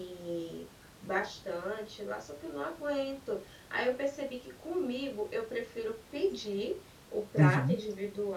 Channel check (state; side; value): identical; both; correlation 1.00